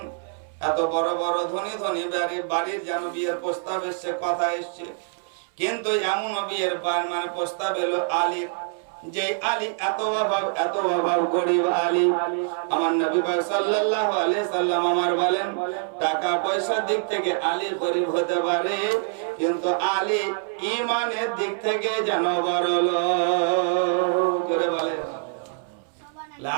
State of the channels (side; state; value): left; silent; 62 dB below the other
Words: এত বড় বড় ধনী বাড়ির যেন বিয়ের প্রস্তাব এসছে, কথা এসছে, কিন্তু এমন বিয়ের মানে প্রস্তাব এলো আলীর, যে আলী এত অভাব গরিব আলী। আমার নবী পাক সাল্লাল্লাহু আলাইহি সাল্লাম আমার বলেন, টাকা পয়সার দিক থেকে আলী গরিব হতে পারে, কিন্তু আলী ঈমানের দিক থেকে যেন বড় লোক। জোরে বলেন